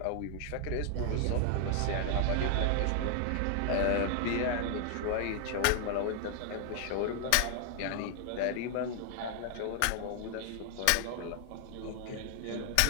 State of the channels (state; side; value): different; both; correlation 0.00